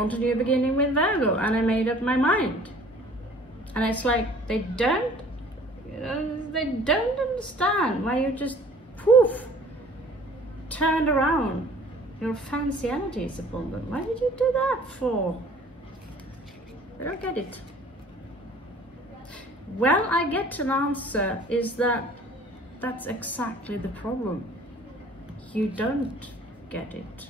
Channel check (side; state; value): both; normal; correlation 0.51